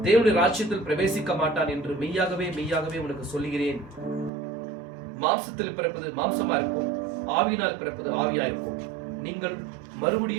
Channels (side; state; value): left; drops out; at 4.3 s